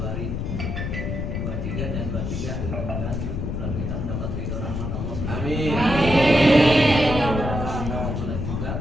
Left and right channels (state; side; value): noise; left; rumble, 3 dB below the sound